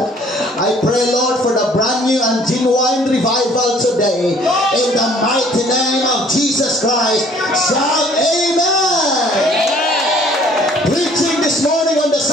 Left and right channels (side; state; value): both; normal; correlation 0.57